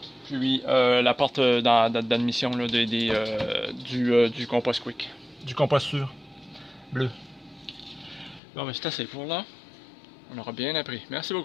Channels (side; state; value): right; drops out; at 8.4 s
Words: Puis la porte d'admission du compost quick. Du compost sûr. Bleu. Bon, mais c'est assez pour là. On aura bien appris. Merci